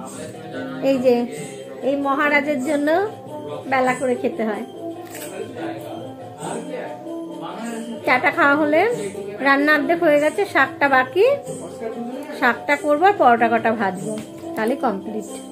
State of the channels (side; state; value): both; identical; correlation 1.00